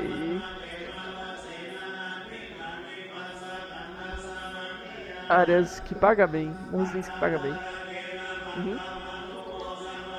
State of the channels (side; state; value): both; identical; correlation 1.00